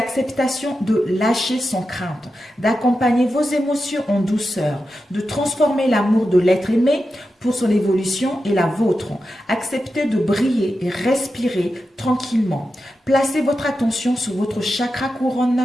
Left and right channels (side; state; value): both; normal; correlation 0.90